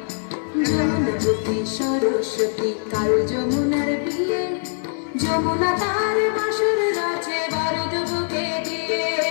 যমুনাবতী সরস্বতী কাল যমুনার বিয়ে, যমুনা তার বাঁশের রচে বারদ বুকে দিয়ে,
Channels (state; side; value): silent; right; 64 dB below the other